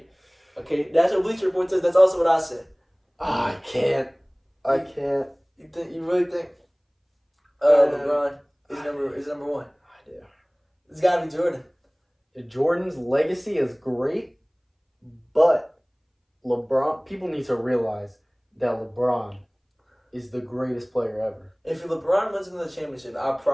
Okay, that's what Bleacher Report says. That's also what I said. I can't. You really think? LeBron is number 1. I do. It's gotta be Jordan. Jordan's legacy is great, but LeBron. People need to realize that LeBron is the greatest player ever. If LeBron wins another championship, I'd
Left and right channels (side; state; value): both; identical; correlation 1.00